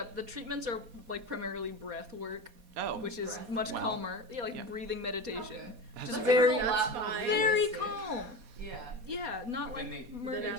The treatments are like primarily breath work, Oh, which is Breath. much Wow. calmer. Yeah, like Yeah. breathing meditation. Okay. That's Just That very, sounds a lot more fine. very realistic. calm. Yeah. Yeah, not But like then they- murder. Then at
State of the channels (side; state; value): left; late; 4.2 ms